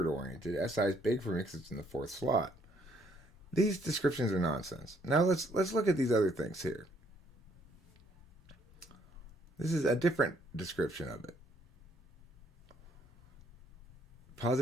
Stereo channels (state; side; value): normal; both; correlation 0.67